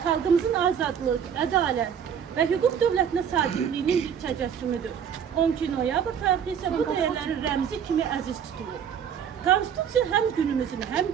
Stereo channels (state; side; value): quieter; left; 8.1 dB